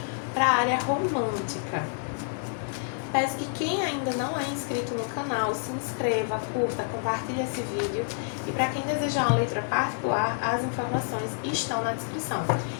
para a área romântica. Peço que quem ainda não é inscrito no canal, se inscreva, curta, compartilhe esse vídeo. E para quem desejar uma leitura particular, as informações estão na descrição.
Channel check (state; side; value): silent; right; 56 dB below the other